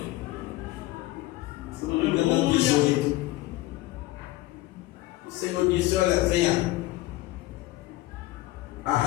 Se não me engano, é o 18. O Senhor disse: olha, venha,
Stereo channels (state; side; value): quieter; right; 18.1 dB